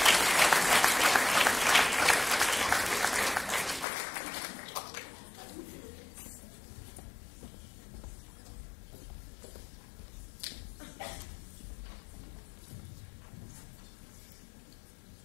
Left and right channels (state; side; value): drops out; right; at 3.9 s